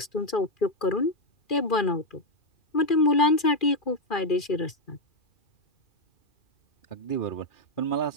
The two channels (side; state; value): right; late; 2.4 ms